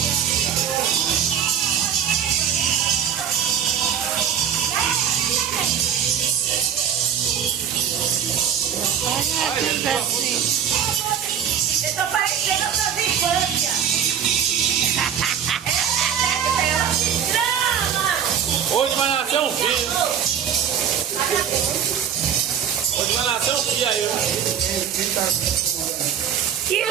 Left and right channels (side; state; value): left; quieter; 8.5 dB